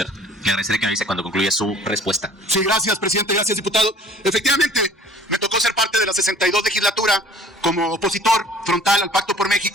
Le agradeceré que me avise cuando concluya su respuesta. Sí, gracias, presidente. Gracias, diputado. Efectivamente, me tocó ser parte de la 62 legislatura como opositor frontal al Pacto por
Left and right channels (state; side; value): normal; both; correlation 0.50